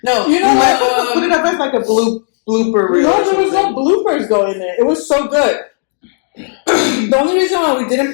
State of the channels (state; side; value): silent; right; digital silence